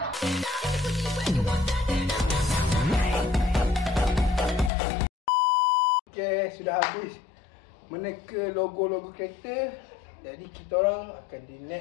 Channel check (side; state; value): right; drops out; at 4.7 s